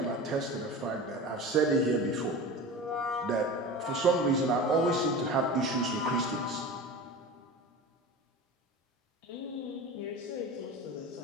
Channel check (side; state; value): both; normal; correlation 0.31